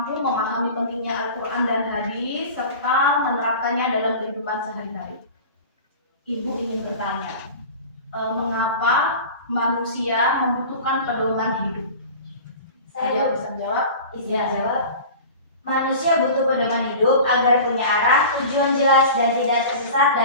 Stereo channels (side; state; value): both; inverted; correlation -0.36